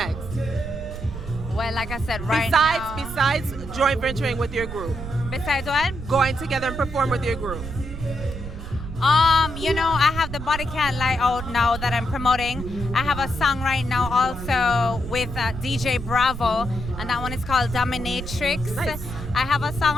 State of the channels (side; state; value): right; noise; rumble, 8 dB below the sound